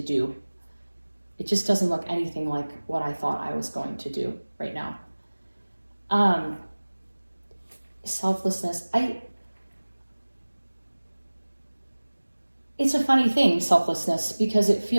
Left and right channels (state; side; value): inverted; both; correlation -1.00